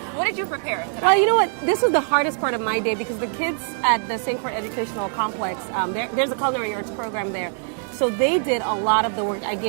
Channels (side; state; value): left; silent; 63 dB below the other